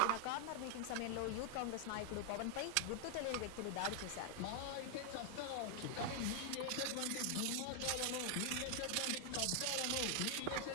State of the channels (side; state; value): both; different; correlation 0.00